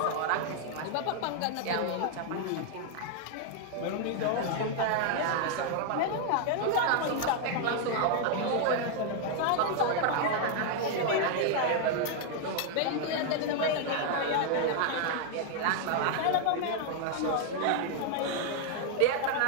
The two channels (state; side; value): different; both; correlation 0.00